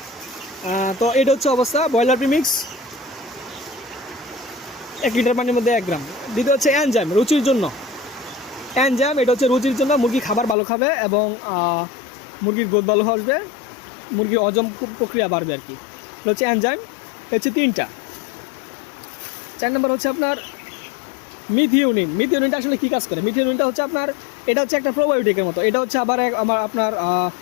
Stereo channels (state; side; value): drops out; right; at 10.6 s